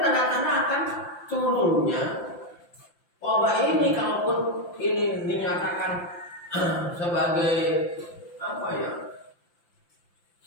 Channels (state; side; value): late; right; 5.8 ms